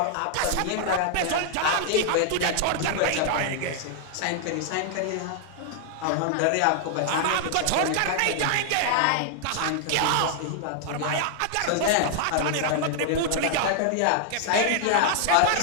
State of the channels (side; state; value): both; different; correlation -0.01